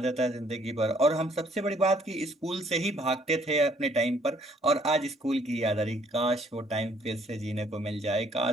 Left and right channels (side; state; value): both; normal; correlation 0.63